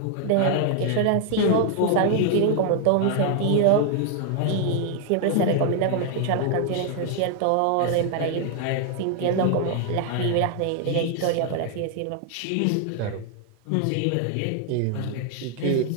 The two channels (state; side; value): different; both; correlation 0.00